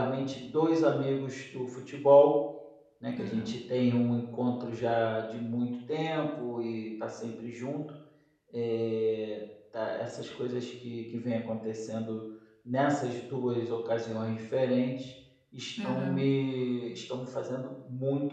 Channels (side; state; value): both; identical; correlation 1.00